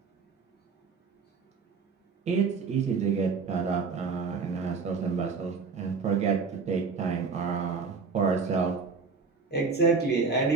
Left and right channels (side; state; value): left; quieter; 5.0 dB